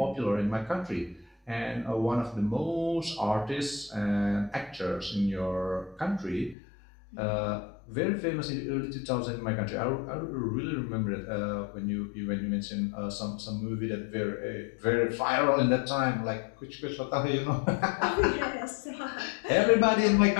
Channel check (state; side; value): drops out; right; at 6.6 s